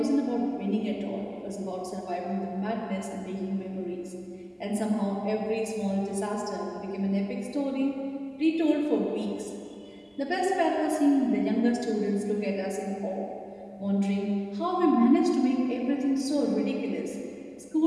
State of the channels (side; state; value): both; identical; correlation 1.00